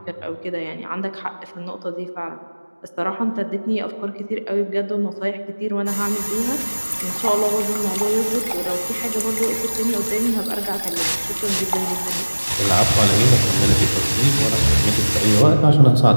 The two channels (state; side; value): inverted; both; correlation -1.00